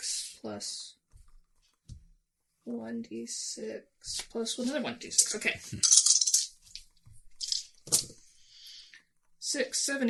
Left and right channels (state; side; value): identical; both; correlation 1.00